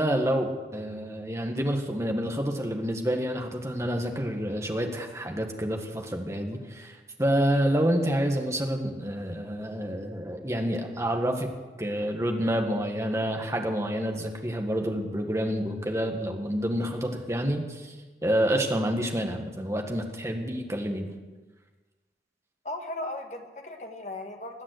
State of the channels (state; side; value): normal; both; correlation 0.80